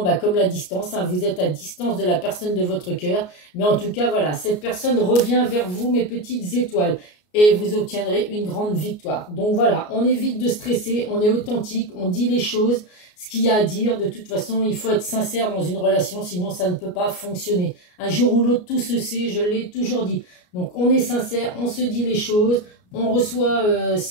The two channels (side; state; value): right; late; 33 ms